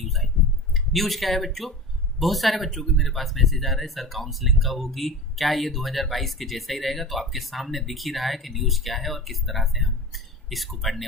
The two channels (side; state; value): both; normal; correlation 0.32